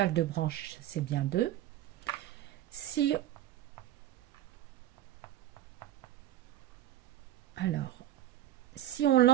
de branches, c'est bien 2. Si on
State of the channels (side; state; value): left; quieter; 12.9 dB